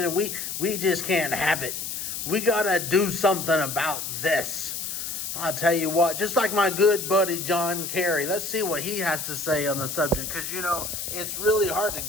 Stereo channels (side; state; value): left; noise; hiss, 5 dB below the sound